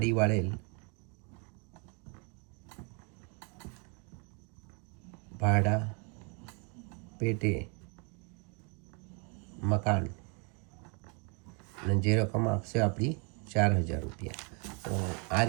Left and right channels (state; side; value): quieter; left; 35.4 dB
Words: વાળેલ ભાડા પેટે મકાન અને જે રકમ આપશે આપણી 4,000 રૂપિયા. તો આ